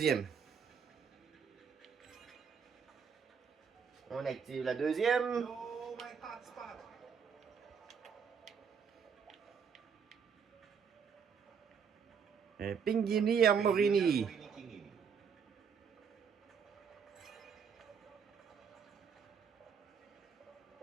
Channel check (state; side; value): quieter; left; 6.6 dB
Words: On active la deuxième. No, my hotspot. Un Pinguini Armorini.